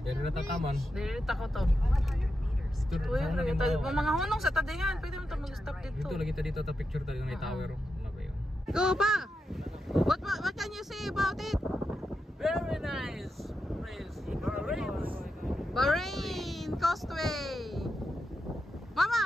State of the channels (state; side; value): normal; both; correlation 0.87